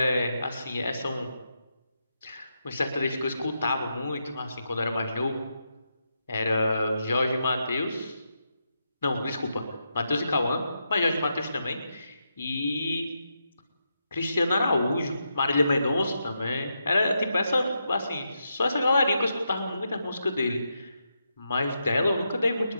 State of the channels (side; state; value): both; inverted; correlation -0.84